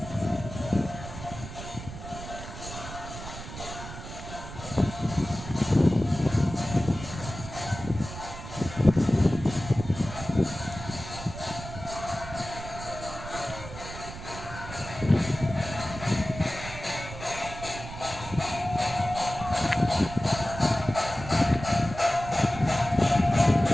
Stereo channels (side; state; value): right; noise; rumble, 11 dB below the sound